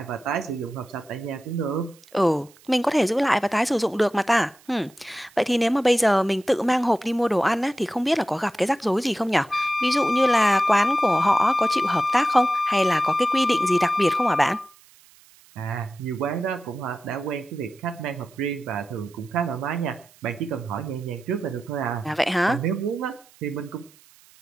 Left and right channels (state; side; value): noise; right; hiss, 27 dB below the sound